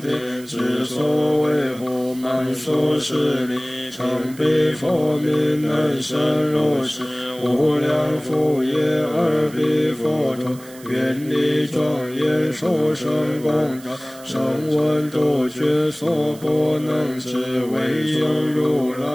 天之所为护，满数十里常彼佛名，能生如是无量福业。而彼佛陀愿力庄严，殊胜功德，声闻独觉所不能知，唯有如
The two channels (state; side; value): noise; right; hiss, 20 dB below the sound